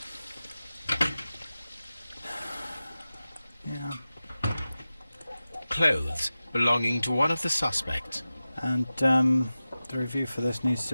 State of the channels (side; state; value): both; inverted; correlation -0.95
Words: yeah. Clothes belonging to one of the suspects. And, the review for this needs to